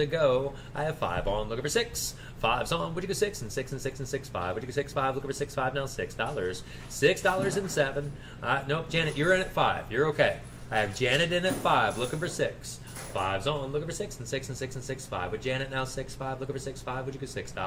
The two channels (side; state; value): both; identical; correlation 1.00